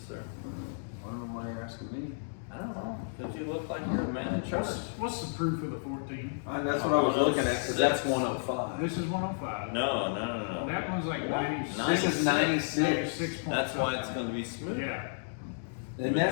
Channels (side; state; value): right; silent; digital silence